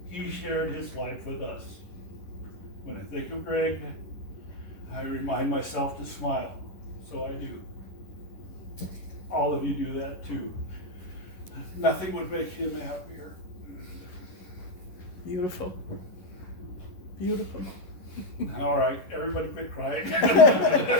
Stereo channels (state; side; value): late; right; 11 ms